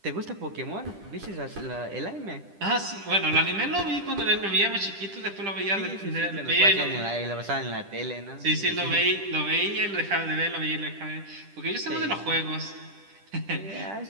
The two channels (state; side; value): late; left; 10 ms